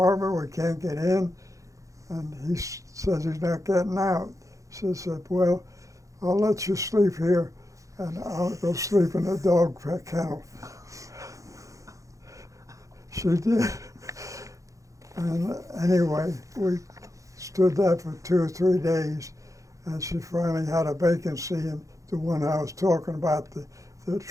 We can't get in." And he says he's not getting out. She said, "Well, I'll let you sleep here, and I'll go sleep in the dog kennel." She did. And anyway, we stood there for 2 or 3 days, and she finally had a vacancy in the one I was talking about, the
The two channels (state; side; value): late; left; 0.16 ms